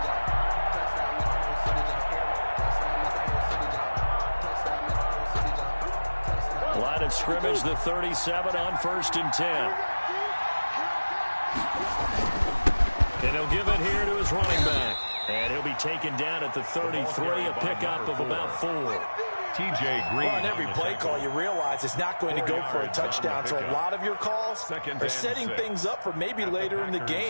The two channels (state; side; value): inverted; both; correlation -1.00